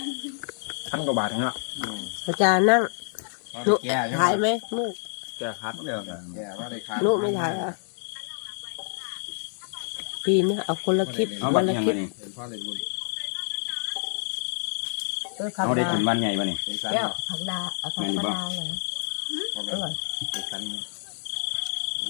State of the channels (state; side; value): silent; right; digital silence